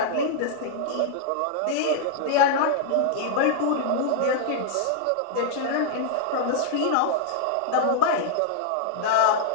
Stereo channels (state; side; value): different; both; correlation -0.01